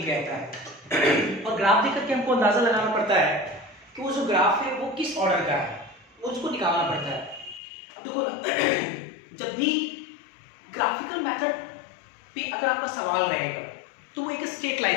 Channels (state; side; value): drops out; right; at 7.6 s